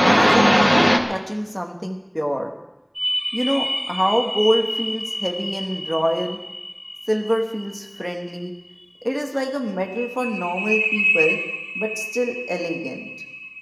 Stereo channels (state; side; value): identical; both; correlation 1.00